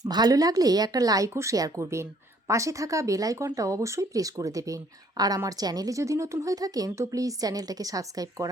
ভালো লাগলে একটা লাইক ও শেয়ার করবেন। পাশে থাকা বেল আইকনটা অবশ্যই প্রেস করে দেবেন। আর আমার চ্যানেলে যদি নতুন হয়ে থাকেন তো প্লিজ চ্যানেলটাকে সাবস্ক্রাইব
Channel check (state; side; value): normal; both; correlation 0.62